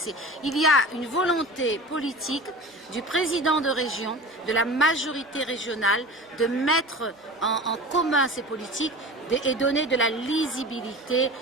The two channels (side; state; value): both; normal; correlation 0.35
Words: Il y a une volonté politique du président de région, de la majorité régionale, de mettre en commun ces politiques et donner de la lisibilité